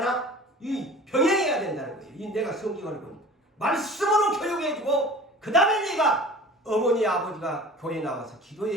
이 병행해야 된다는 거예요. 이 내가 성경을 보니까. 말씀으로 교육해주고 그 다음에 네가 어머니 아버지가 교회에 나와서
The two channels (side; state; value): both; normal; correlation 0.42